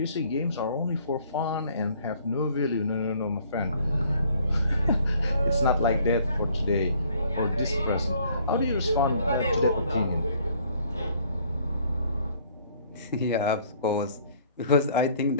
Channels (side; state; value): both; inverted; correlation -0.60